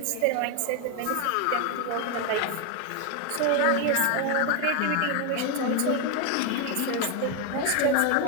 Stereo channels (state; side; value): different; both; correlation 0.01